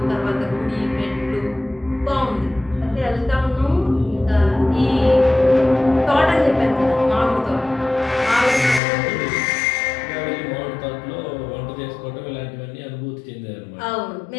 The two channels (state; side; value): drops out; right; at 8.8 s